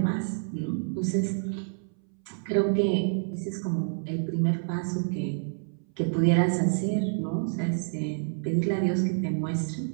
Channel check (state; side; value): silent; left; 59 dB below the other